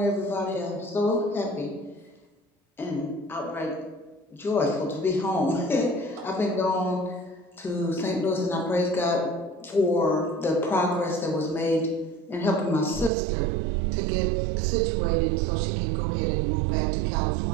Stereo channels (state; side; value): drops out; left; at 13.1 s